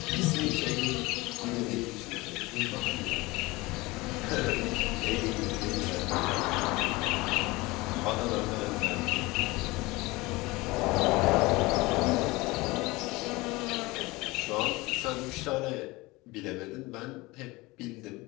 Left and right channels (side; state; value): right; quieter; 22.2 dB